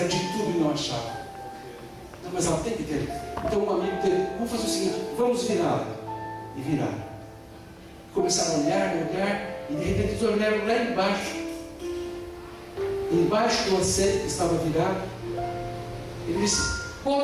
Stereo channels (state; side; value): identical; both; correlation 1.00